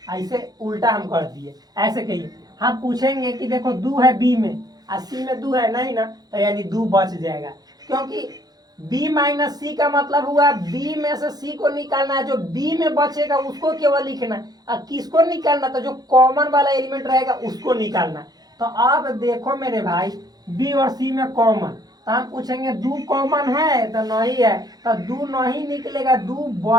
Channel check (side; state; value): left; late; 0.19 ms